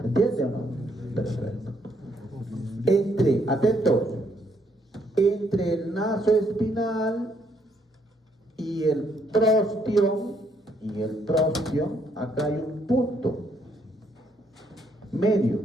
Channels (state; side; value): normal; both; correlation 0.71